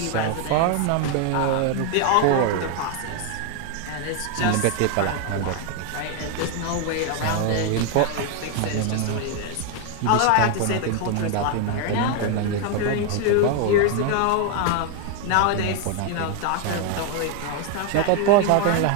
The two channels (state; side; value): different; both; correlation 0.01